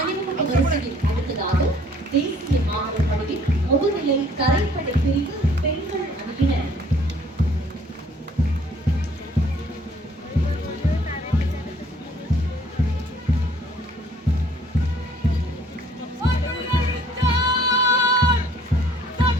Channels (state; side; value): normal; both; correlation 0.58